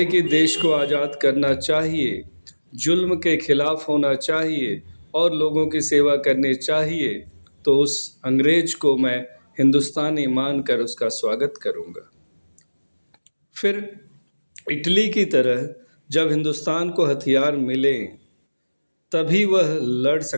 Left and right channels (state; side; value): inverted; both; correlation -1.00